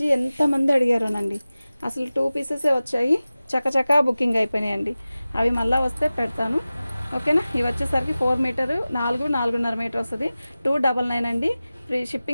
ఎంతమంది అడిగారోనండి. అసలు 2 పీసెసే వచ్చాయి, చకచకా బుకింగ్ అయిపోయినాయండి. అవి మళ్ళీ వస్తే పెడతాను. ఓకేనా, ఇవి వచ్చేసరికి 4 మీటరు, 4.5 మీటర్ వస్తుంది. 299 అండి. ఫ్రీ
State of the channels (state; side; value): inverted; both; correlation -0.96